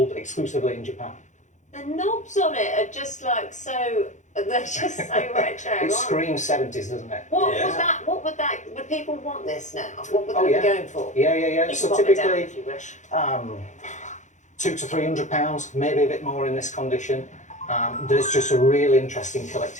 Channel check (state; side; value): late; right; 0.35 ms